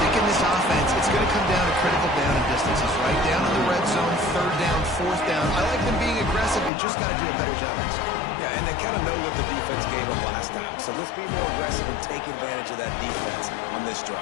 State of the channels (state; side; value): drops out; right; at 6.7 s